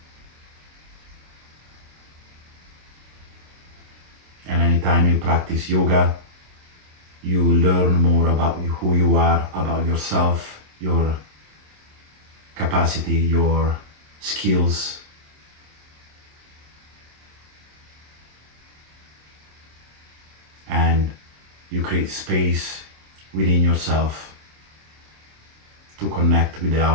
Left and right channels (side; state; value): left; late; 27 ms